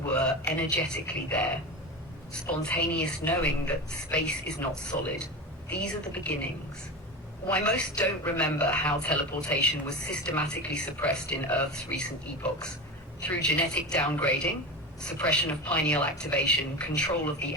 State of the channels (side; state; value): both; normal; correlation 0.24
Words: were energetically there, spontaneous knowing that space is not solid. These are the beginnings. Why most don't remember how teleportation was systematically suppressed in Earth's recent epochs. Through genetic downgrading, suppression of pineal activation, control of the